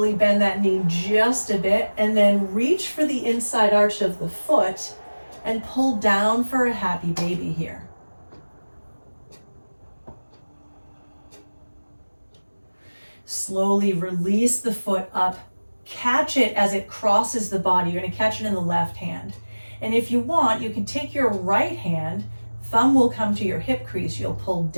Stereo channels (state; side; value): inverted; both; correlation -1.00